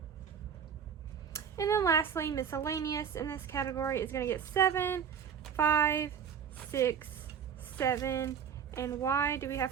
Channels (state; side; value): quieter; left; 7.7 dB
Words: And then lastly, miscellaneous in this category is going to get 7, 5, 6, 7, and why do we have